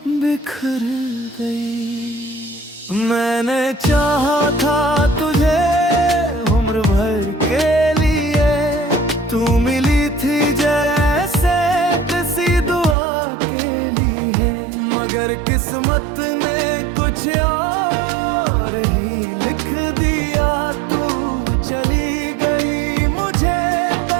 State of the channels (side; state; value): left; drops out; at 13.0 s